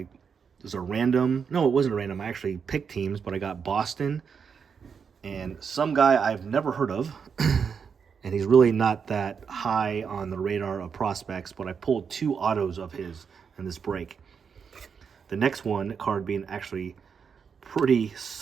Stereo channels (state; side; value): quieter; left; 6.4 dB